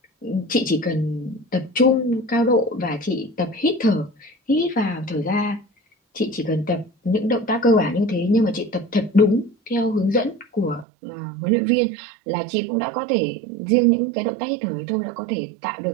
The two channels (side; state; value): left; drops out; at 10.9 s